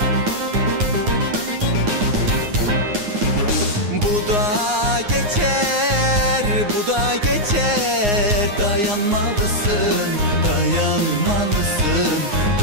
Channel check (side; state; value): left; late; 9.7 ms